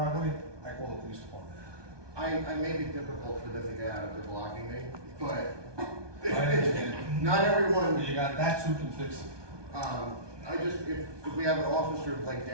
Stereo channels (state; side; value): late; left; 1.2 ms